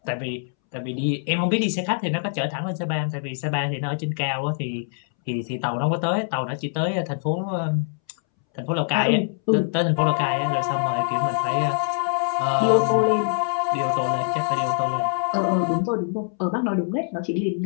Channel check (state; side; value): silent; right; 63 dB below the other